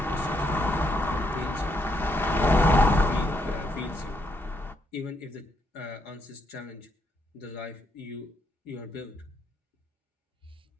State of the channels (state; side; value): normal; both; correlation 0.76